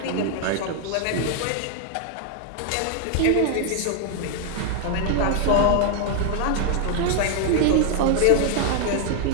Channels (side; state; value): both; different; correlation 0.00